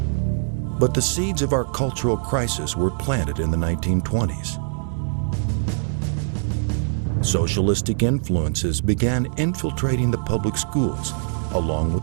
But the seeds of our cultural crisis were planted in the 1920s. Socialistic influences began infiltrating the public schools, along with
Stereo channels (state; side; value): silent; left; 64 dB below the other